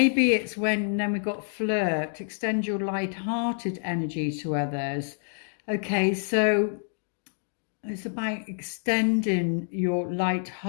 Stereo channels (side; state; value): right; silent; digital silence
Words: it's when, then we've got flirt, extend your light-hearted energy to others. Okay, so it's about extending your